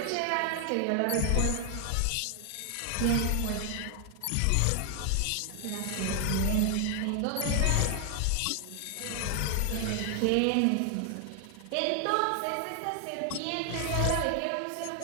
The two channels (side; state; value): both; different; correlation 0.00